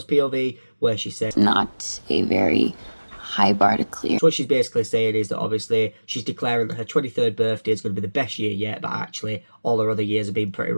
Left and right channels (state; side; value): inverted; both; correlation -1.00